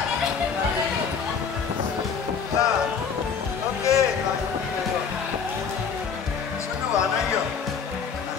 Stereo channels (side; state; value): right; quieter; 6.3 dB